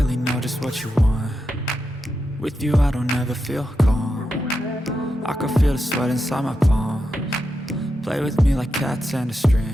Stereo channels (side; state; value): both; normal; correlation 0.87